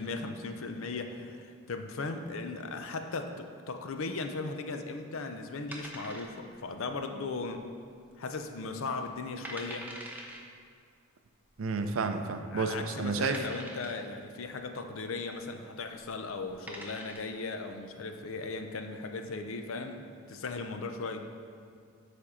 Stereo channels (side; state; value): both; normal; correlation 0.08